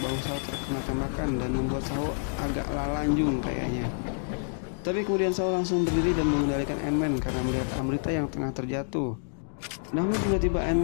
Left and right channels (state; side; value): silent; right; digital silence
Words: bahu Saho terkena tembakan dan membuat Saho agak lalanjung kayaknya. Tapi kemudian Saho langsung berdiri dan mengendalikan Ant-Man karena melihat Amrita yang tengah terjatuh. Namun tiba-tiba